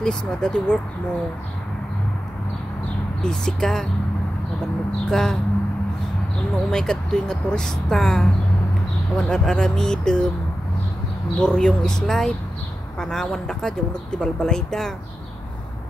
na dati work mo busy ka, mabanog ka, umay ka tuwing nga turista, awan aramidem buryong is life, panawan da ka, diyan nagtibalbalay da,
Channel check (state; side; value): normal; both; correlation 0.92